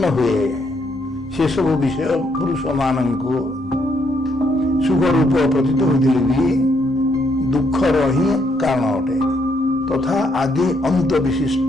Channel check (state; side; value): normal; both; correlation 0.74